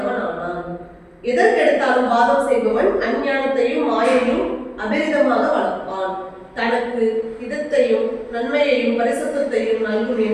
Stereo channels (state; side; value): identical; both; correlation 1.00